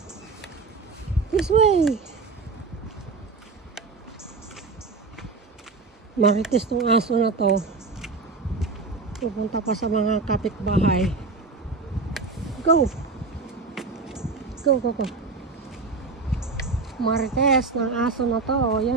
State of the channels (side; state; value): left; quieter; 4.2 dB